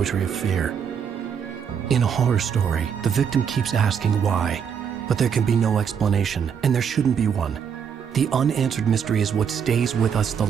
of fear. In a horror story, the victim keeps asking why, but there can be no explanation, and there shouldn't be one. The unanswered mystery is what stays with us the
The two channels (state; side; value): quieter; left; 7.4 dB